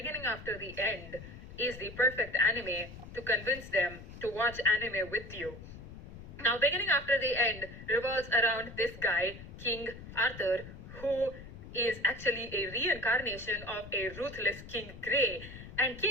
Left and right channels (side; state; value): left; noise; rumble, 14 dB below the sound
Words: after the end is the perfect anime to convince them to watch anime with you. Now, beginning after the end revolves around this guy, King Arthur, who is actually a reincarnation of a ruthless King Grey. And